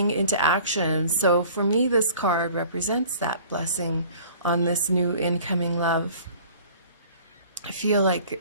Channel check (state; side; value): inverted; both; correlation -0.48